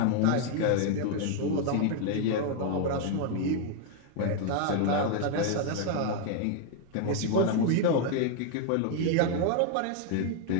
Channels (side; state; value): both; different; correlation 0.01